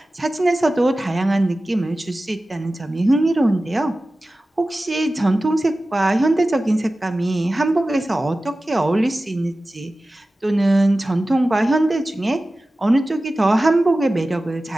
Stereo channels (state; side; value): normal; both; correlation 0.96